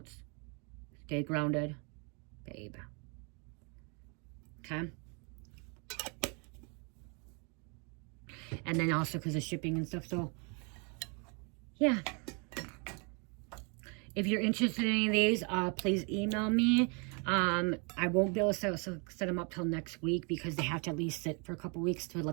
Stay Grounded Babe, okay. And then also because of shipping and stuff, so yeah. If you're interested in any of these, please email me. I won't be able to set them up till next week because they have to at least sit for a couple weeks to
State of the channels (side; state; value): left; quieter; 34.4 dB